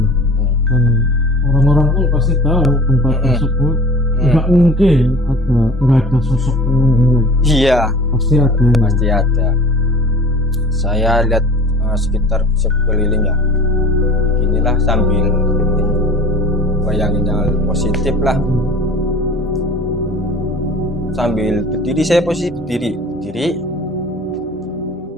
Dan orang-orang pun pasti tahu tempat tersebut nggak mungkin nggak ada sosok penunggunya. Iya, Pasti ada. pasti ada. Saya lihat sekitar sekeliling ya, inilah sambil bayangin yang positif lah. Sambil berdiri, saya posisi berdiri.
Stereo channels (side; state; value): both; normal; correlation 0.43